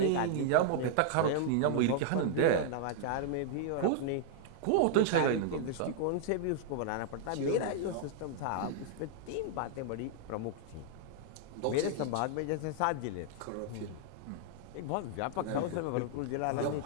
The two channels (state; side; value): different; both; correlation 0.00